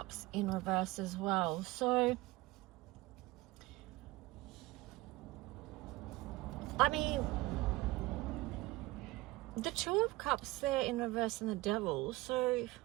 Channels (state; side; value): quieter; left; 20.3 dB